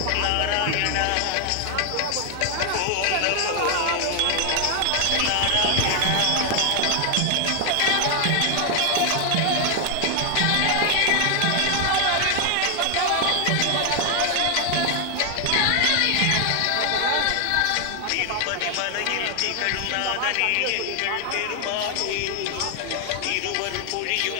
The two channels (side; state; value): both; different; correlation 0.00